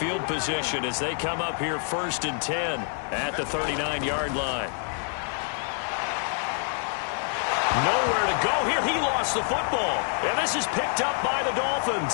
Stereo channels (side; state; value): right; silent; 55 dB below the other